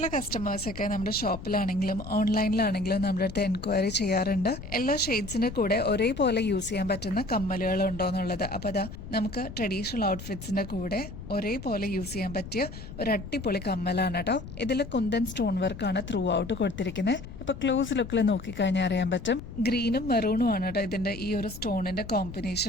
കസ്റ്റമേഴ്സൊക്കെ നമ്മുടെ ഷോപ്പിലാണെങ്കിലും ഓൺലൈനിലാണെങ്കിലും നമ്മുടെ അടുത്ത് എൻക്വയറി ചെയ്യാറുണ്ട്, എല്ലാ ഷെയ്ഡ്സിന്റെ കൂടെ ഒരേപോലെ യൂസ് ചെയ്യാൻ പറ്റുന്ന കമ്മലുകൾ ഉണ്ടോ എന്നുള്ളത്. അപ്പൊ അതാ നമുക്ക് ട്രഡീഷണൽ ഔട്ട്ഫിറ്റ്സിന്റെ കൂടെ ഒരേപോലെ യൂസ് ചെയ്യാൻ പറ്റിയ ഒരു അടിപൊളി കമ്മലാണ് കേട്ടോ. ഇതിൽ കുന്തൻ സ്റ്റോൺ വർക്കാണ് ത്രൂ ഔട്ട് കൊടുത്തിരിക്കുന്നത്. ഇപ്പൊ ക്ലോസ് ലുക്കിൽ നോക്കിക്കഴിഞ്ഞാൽ അറിയാൻ പറ്റും. ഗ്രീനും മെറൂണും ആണ് കേട്ടോ ഇതിന്റെ ഈ ഒരു സ്റ്റോണിന്റെ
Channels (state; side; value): noise; left; rumble, 12 dB below the sound